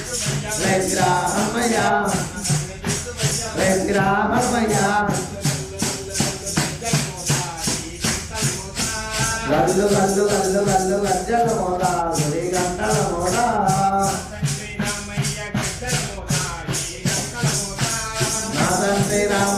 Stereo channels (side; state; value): both; identical; correlation 1.00